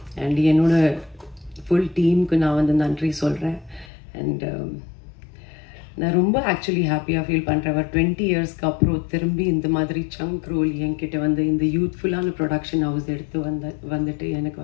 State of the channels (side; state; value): right; drops out; at 3.9 s